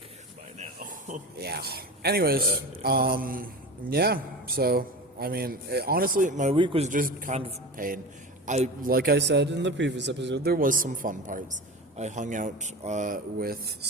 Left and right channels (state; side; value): normal; both; correlation 0.30